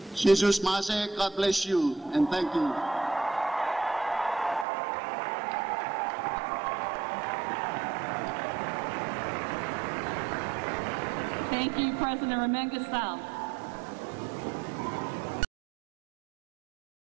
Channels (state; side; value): drops out; left; at 4.7 s